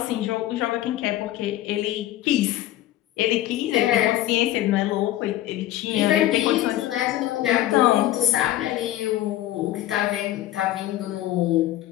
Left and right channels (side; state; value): right; quieter; 14.2 dB